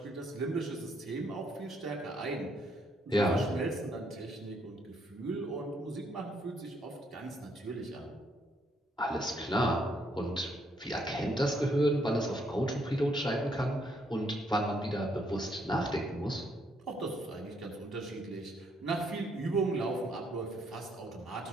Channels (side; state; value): both; normal; correlation 0.72